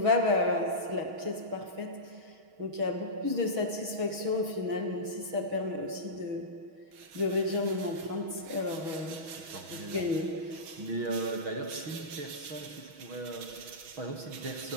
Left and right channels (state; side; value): late; left; 6.3 ms